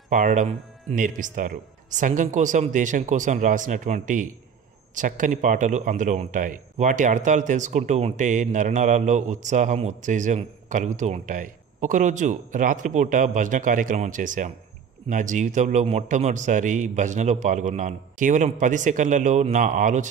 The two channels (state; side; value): quieter; left; 6.9 dB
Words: పాడడం నేర్పిస్తారు. సంఘం కోసం, దేశం కోసం రాసినటువంటి చక్కని పాటలు అందులో ఉంటాయి. వాటి అర్థాలు తెలుసుకుంటూ ఉంటే నరనరాల్లో ఉత్సాహం, ఉత్తేజం కలుగుతూ ఉంటాయి. ఒకరోజు రాత్రిపూట భజన కార్యక్రమం చేశాం. నా జీవితంలో మొట్టమొదటిసారి భజనలో పాల్గొన్నాను. కేవలం 10 సెకండ్లలో నా